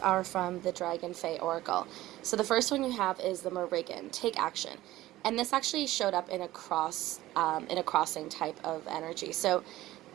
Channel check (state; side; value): quieter; left; 16.2 dB